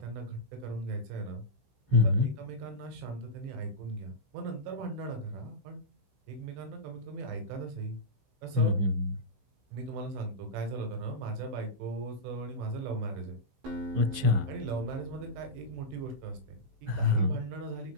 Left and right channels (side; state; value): left; late; 15 ms